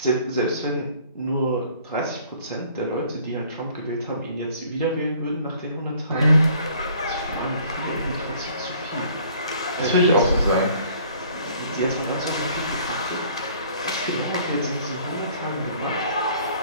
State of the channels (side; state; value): both; inverted; correlation -0.56